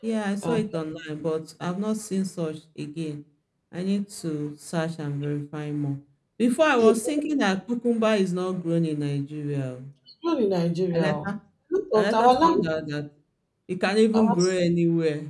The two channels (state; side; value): identical; both; correlation 1.00